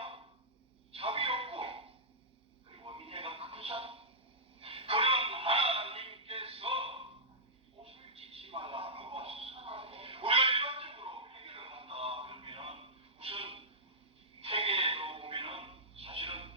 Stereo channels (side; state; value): both; normal; correlation -0.11